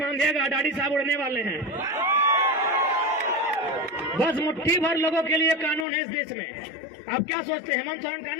बांधिएगा, दाढ़ी साहब उड़ने वाले हैं। बस मुट्ठी भर लोगों के लिए कानून है इस देश में। आप क्या सोचते हैं हेमंत सोरेन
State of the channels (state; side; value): drops out; right; at 5.9 s